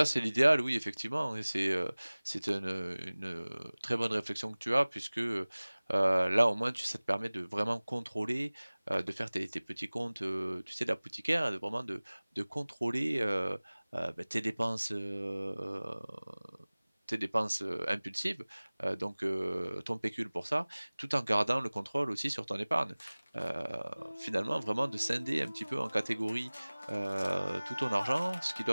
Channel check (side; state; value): both; inverted; correlation -1.00